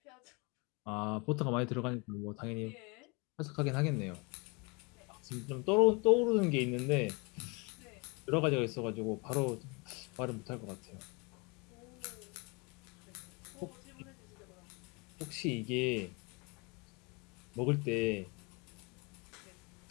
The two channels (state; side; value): quieter; right; 29.3 dB